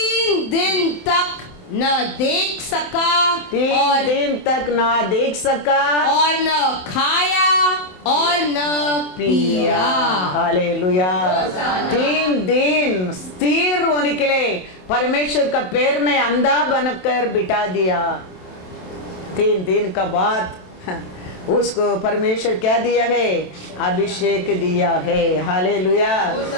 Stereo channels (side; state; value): right; late; 27 ms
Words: दिन तक न देख सका, 3 दिन तक ना देख सका और न खाया और न पिया। हालेलुया। 3 दिन स्थिर होने के लिए परमेश्वर का पैर में अंधा बनकर बिठा दिया। 3 दिन का बाद उसको परमेश्वर क्या दिया है? अभिषेक दिया है। हालेलुया।